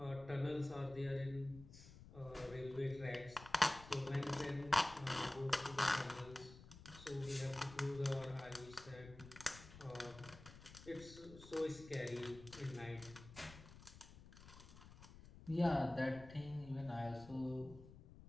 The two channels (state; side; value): noise; left; rumble, 17 dB below the sound